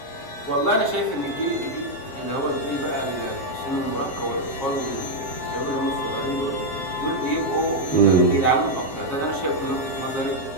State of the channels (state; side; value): late; right; 7.3 ms